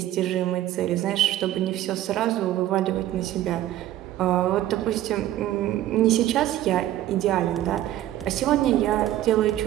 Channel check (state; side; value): quieter; left; 13.6 dB